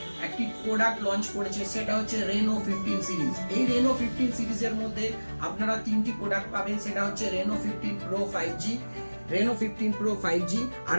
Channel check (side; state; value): both; inverted; correlation -1.00